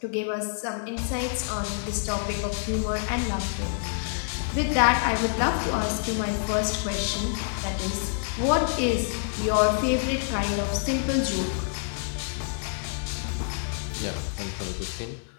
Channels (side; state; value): right; silent; digital silence